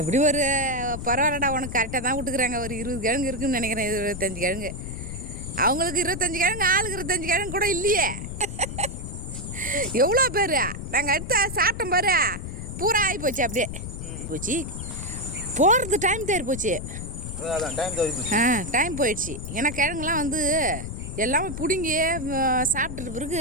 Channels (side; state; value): left; noise; rumble, 7 dB below the sound